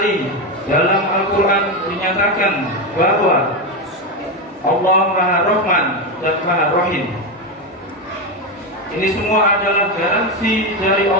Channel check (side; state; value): both; normal; correlation 0.12